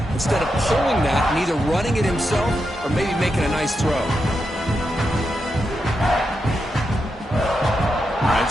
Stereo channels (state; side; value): normal; both; correlation 0.86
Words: instead of pulling that and either running it himself or maybe making a nice throw. All